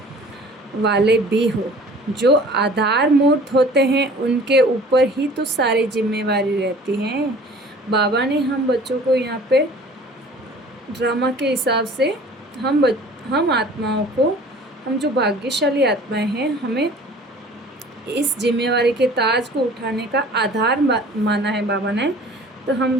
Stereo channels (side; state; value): both; normal; correlation 0.47